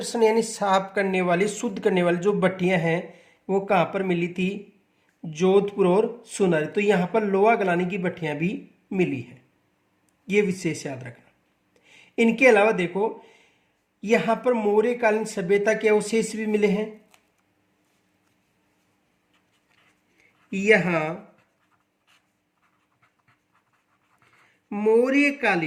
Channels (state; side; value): identical; both; correlation 1.00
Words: यानी साफ करने वाली, शुद्ध करने वाली जो भट्टियां हैं वो कहां पर मिली थी? जोधपुर और सोनारी। तो यहां पर लोहा गलाने की भट्टियां भी मिली है, ये विशेष याद रखना। इनके अलावा देखो यहां पर मौर्यकालीन सभ्यता के अवशेष भी मिले हैं। यहां